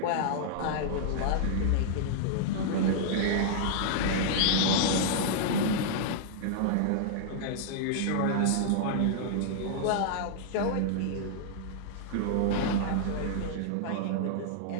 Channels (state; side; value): different; both; correlation -0.01